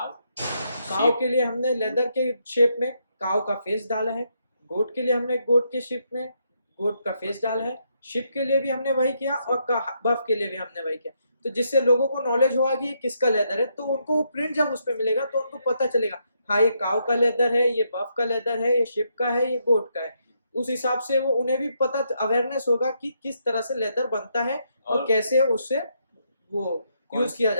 के लिए हमने लेदर के शेप में काव का फेस डाला है. गोट के लिए हमने गोट के शेप में गोट का फेस डाला है. शिप के लिए भी हमने वही किया और बफ के लिए भी हमने वही किया. तो जिससे लोगों को नॉलेज होगा कि किसका लेदर है, तो उनको वो प्रिंट जब उस पर मिलेगा तो उनको पता चलेगा हाँ ये काव का लेदर है, ये बफ का लेदर है, ये शिप का है, ये गोट का है. उस हिसाब से वो उन्हें भी पता अवेयरनेस होगा कि किस तरह से लेदर बनता है और कैसे उससे वो यूज किया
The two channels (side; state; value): both; inverted; correlation -0.77